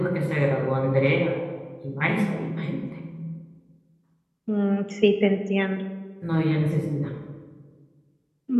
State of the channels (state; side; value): identical; both; correlation 1.00